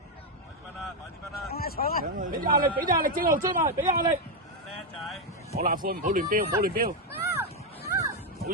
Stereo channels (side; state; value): both; normal; correlation 0.03